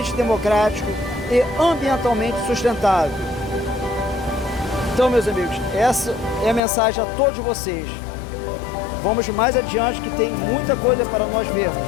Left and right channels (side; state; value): right; drops out; at 6.6 s